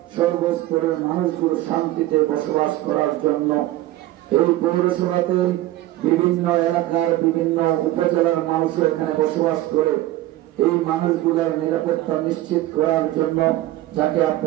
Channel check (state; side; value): quieter; left; 15.8 dB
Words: সর্বস্তরের মানুষগুলো শান্তিতে বসবাস করার জন্য, এই পৌরসভাতে বিভিন্ন এলাকার বিভিন্ন উপজেলার মানুষ এখানে বসবাস করে এই মানুষগুলোর নিরাপত্তা নিশ্চিত করার জন্য, যাকে